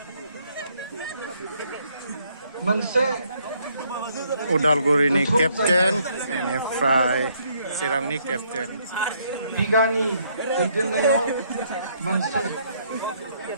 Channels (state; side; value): inverted; both; correlation -0.69